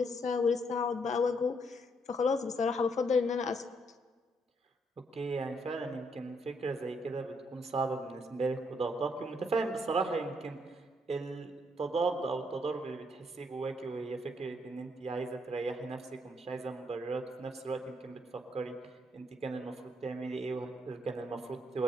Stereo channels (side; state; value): both; normal; correlation 0.73